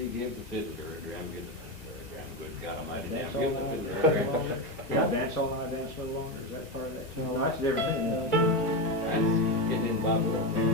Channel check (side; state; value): both; normal; correlation 0.14